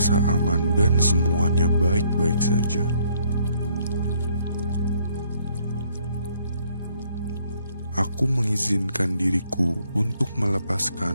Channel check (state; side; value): inverted; both; correlation -0.67